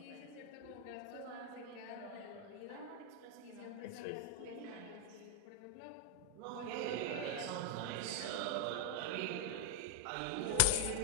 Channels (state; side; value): different; both; correlation 0.00